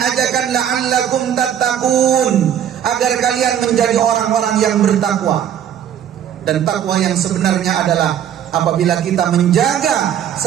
la'allakum tattaqun, agar kalian menjadi orang-orang yang bertakwa. Dan takwa yang sebenarnya adalah apabila kita menjaga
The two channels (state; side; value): quieter; left; 9.8 dB